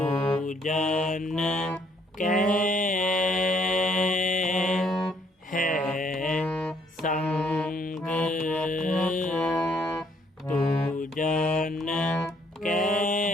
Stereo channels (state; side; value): normal; both; correlation 0.67